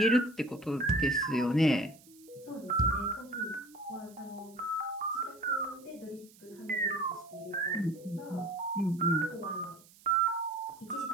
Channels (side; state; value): right; noise; hiss, 25 dB below the sound